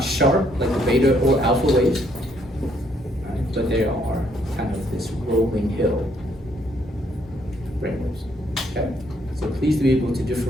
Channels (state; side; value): normal; both; correlation 0.69